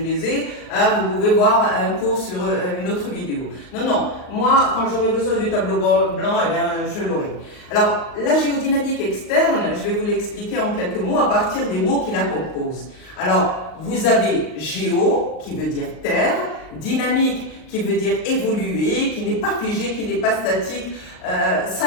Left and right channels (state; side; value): late; right; 39 ms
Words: ai, vous pouvez voir un cours sur une autre vidéo. Non, moi quand j'aurai besoin du tableau blanc, eh bien, je l'aurai. Alors la géodynamique externe, je vais vous l'expliquer en quelques mots à partir des mots qui la composent. Alors vous avez géo qui veut dire terre, dynamique qui veut dire évoluer, qui n'est pas figé, qui n'est pas statique,